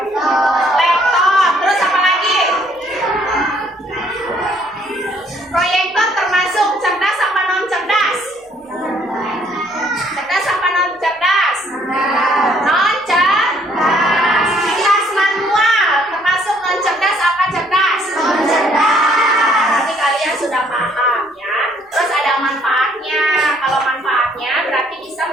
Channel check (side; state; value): both; normal; correlation 0.64